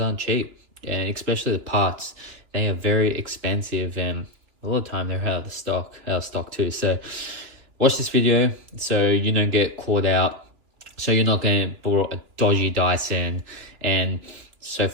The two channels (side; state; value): left; late; 2.8 ms